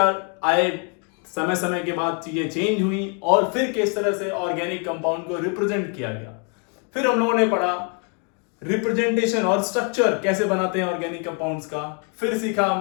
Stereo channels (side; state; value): right; quieter; 38.8 dB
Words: आए, समय समय के बाद चीजें चेंज हुई और फिर किस तरह से ऑर्गेनिक कंपाउंड को रिप्रेजेंट किया गया। फिर हम लोगों ने पढ़ा रिप्रेजेंटेशन और स्ट्रक्चर कैसे बनाते हैं ऑर्गेनिक कंपाउंड्स का। फिर सीखा